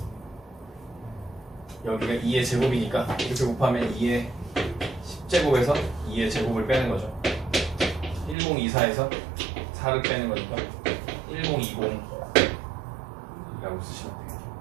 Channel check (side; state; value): left; drops out; at 8.3 s